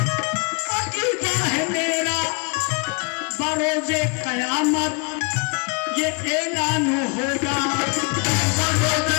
अकीदा है मेरा, बरोज़े क़यामत ये ऐलान होगा, बरोज़े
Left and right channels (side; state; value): right; quieter; 34.3 dB